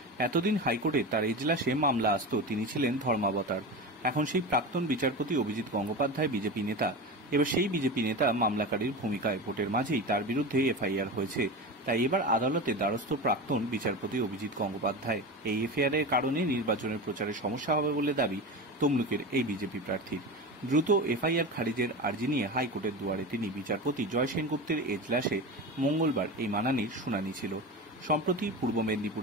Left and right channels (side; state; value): both; normal; correlation 0.26